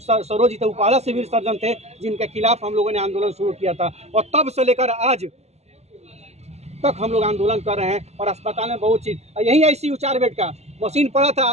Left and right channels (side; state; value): left; late; 0.31 ms